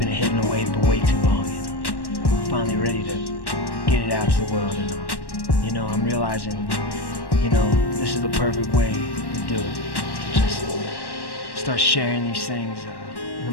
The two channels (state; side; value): late; right; 1.1 ms